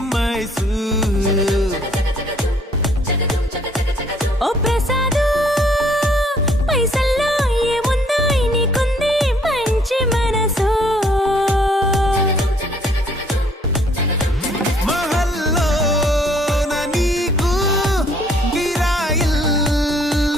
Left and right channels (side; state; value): both; normal; correlation 0.62